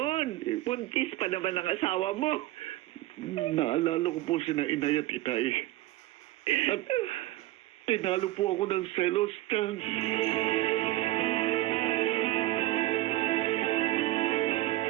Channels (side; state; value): left; quieter; 17.0 dB